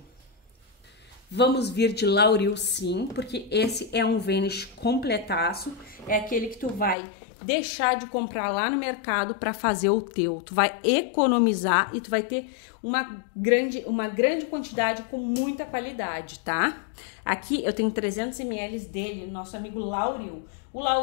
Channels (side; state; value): right; drops out; at 7.0 s